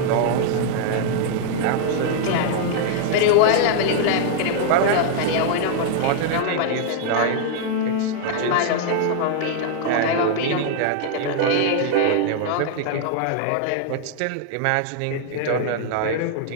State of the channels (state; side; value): different; both; correlation 0.00